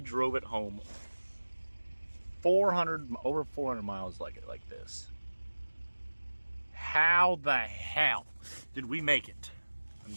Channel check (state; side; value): inverted; both; correlation -1.00